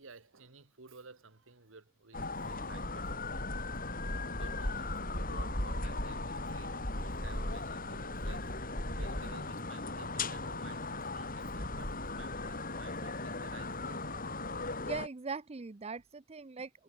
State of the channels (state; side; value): normal; both; correlation 0.28